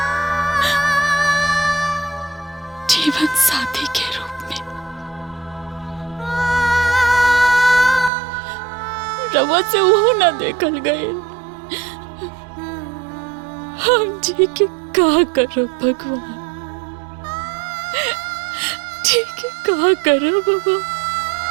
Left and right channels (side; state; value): left; drops out; at 8.1 s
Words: जीवन साथी के रूप में। रवा से वो ना देखल गए। हम जी के का करो भगवान, जी के का करो बाबा।